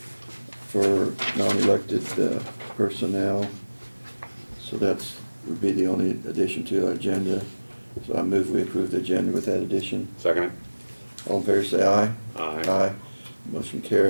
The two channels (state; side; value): inverted; both; correlation -1.00